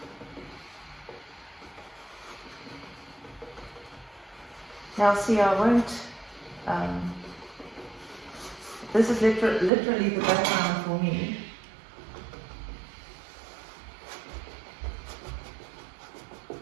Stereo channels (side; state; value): left; drops out; at 9.7 s